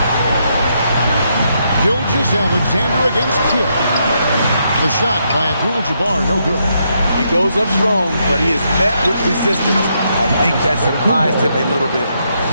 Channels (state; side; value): inverted; both; correlation -0.78